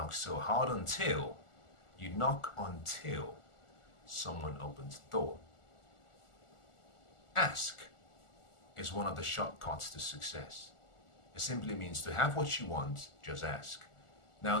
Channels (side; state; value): right; late; 1.4 ms